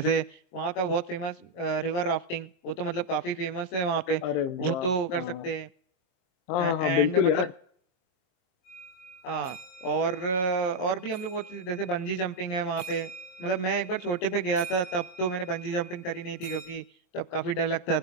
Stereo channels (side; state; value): right; late; 23 ms